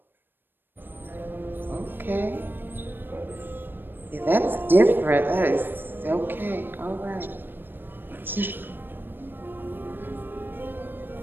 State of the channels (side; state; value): left; late; 0.096 ms